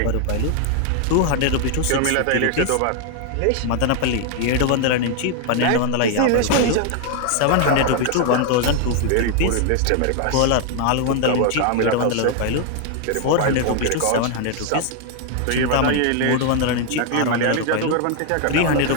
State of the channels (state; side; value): different; both; correlation 0.00